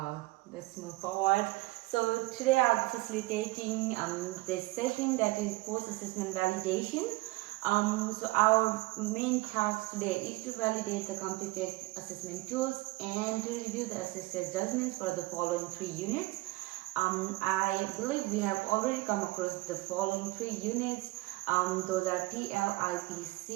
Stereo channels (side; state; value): left; quieter; 21.3 dB